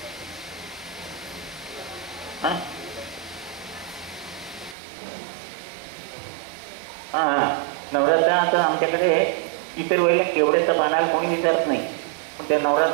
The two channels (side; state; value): left; drops out; at 4.8 s